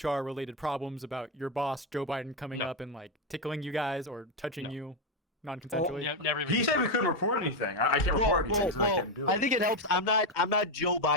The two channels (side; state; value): both; normal; correlation 0.06